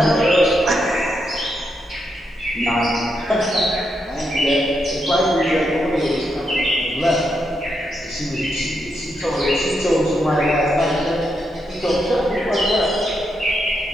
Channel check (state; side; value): normal; both; correlation 0.82